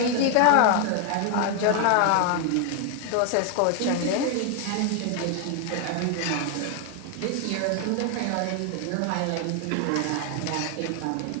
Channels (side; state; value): both; different; correlation 0.00